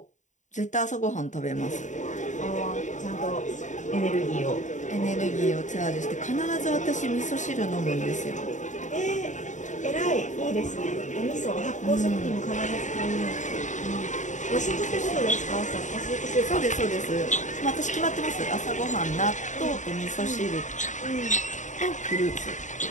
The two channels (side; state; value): right; late; 0.36 ms